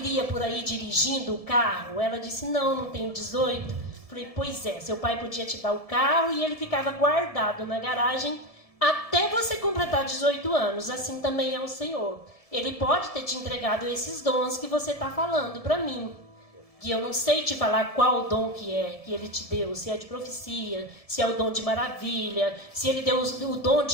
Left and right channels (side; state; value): right; late; 1.7 ms